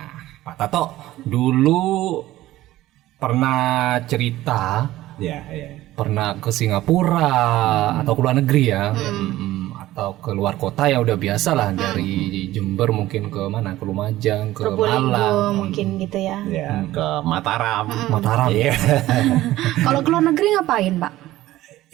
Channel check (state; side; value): quieter; left; 15.8 dB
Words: Pak Tato dulu pernah cerita, pernah ke Singapura atau ke luar negeri ya, atau ke luar kota ya udah biasa lah dari Jember mungkin ke mana, ke Lumajang, ke Malang, mungkin gitu ya. Ya, ke Mataram. Mataram. Iya. Kalau ke luar negeri ngapain Pak?